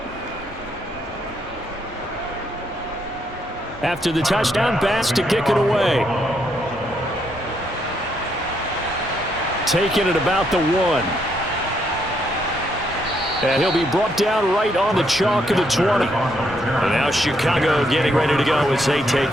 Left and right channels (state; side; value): normal; both; correlation 0.75